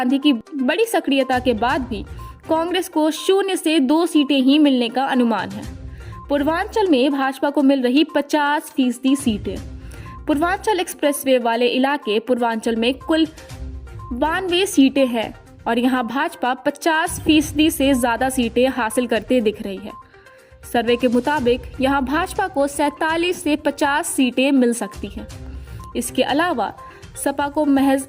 की बड़ी सक्रियता के बाद भी कांग्रेस को 0 से 2 सीटें ही मिलने का अनुमान है। पूर्वांचल में भाजपा को मिल रही 50% सीटें। पूर्वांचल एक्सप्रेसवे वाले इलाके पूर्वांचल में कुल 92 सीटें हैं और यहाँ भाजपा 50% से ज्यादा सीटें हासिल करते दिख रही है। सर्वे के मुताबिक यहाँ भाजपा को 47 से 50 सीटें मिल सकती हैं। इसके अलावा सपा को महज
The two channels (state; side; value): identical; both; correlation 1.00